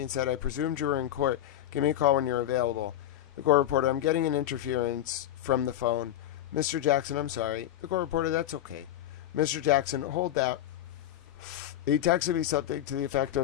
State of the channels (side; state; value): right; quieter; 12.1 dB